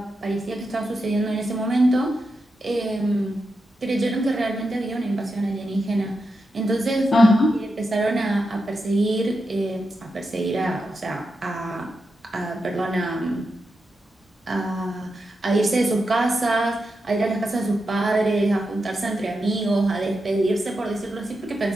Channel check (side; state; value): both; normal; correlation 0.88